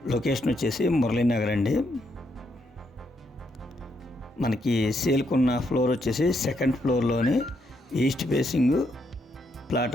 లొకేషన్ వచ్చేసి మురళీనగర్ అండి. మనకి సేల్కి ఉన్న ఫ్లోర్ వచ్చేసి సెకండ్ ఫ్లోర్లోని ఈస్ట్ ఫేసింగ్ ప్లాట్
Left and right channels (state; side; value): normal; both; correlation 0.77